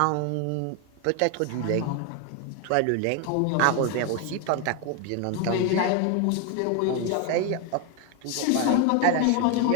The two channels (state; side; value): different; both; correlation 0.01